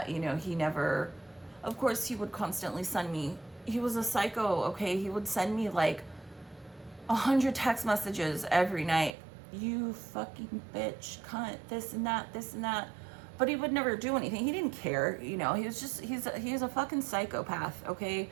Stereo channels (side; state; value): left; drops out; at 9.2 s